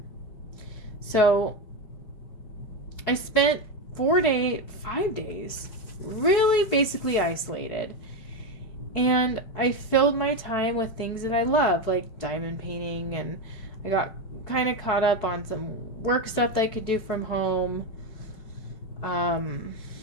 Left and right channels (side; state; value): right; late; 4.6 ms